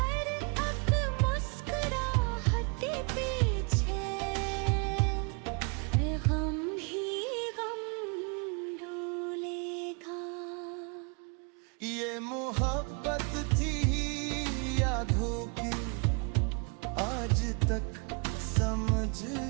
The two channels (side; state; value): left; quieter; 34.6 dB